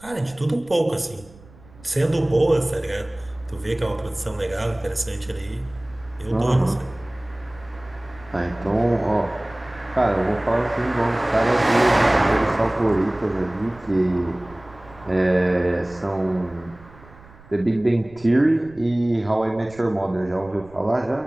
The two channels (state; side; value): noise; right; rumble, 23 dB below the sound